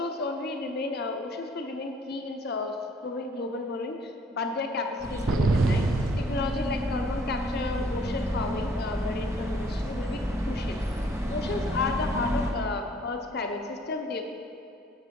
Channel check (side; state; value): both; normal; correlation 0.60